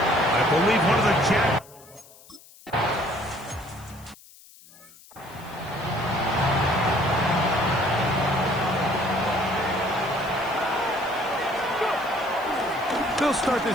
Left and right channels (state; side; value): noise; left; hiss, 23 dB below the sound